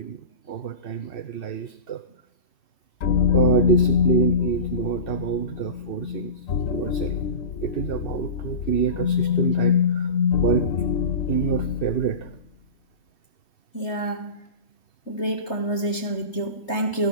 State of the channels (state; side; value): late; right; 3.3 ms